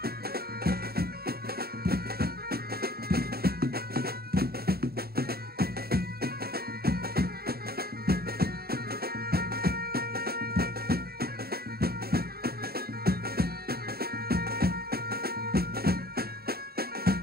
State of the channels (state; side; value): late; left; 0.45 ms